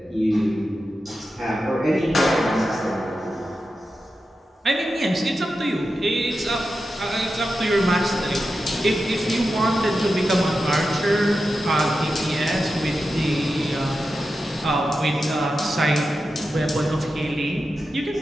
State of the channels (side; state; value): both; normal; correlation 0.91